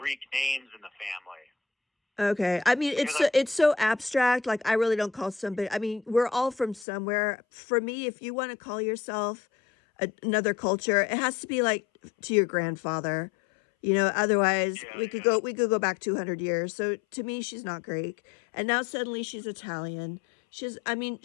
names in the family. Okay. I mean, it's so abstract. Like, I really don't call somebody. I mean, we're all from somewhere. For me, if you want to call yourself another culture, it has to be like to your grandfather. You know, otherwise we could go back 200 years. So to me, she's not Greek. And now suddenly she's Italian. She's I know,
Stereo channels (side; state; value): right; drops out; at 6.9 s